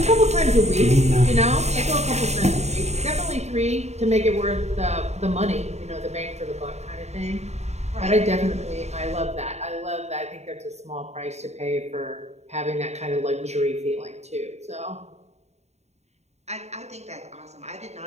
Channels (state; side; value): late; left; 0.32 ms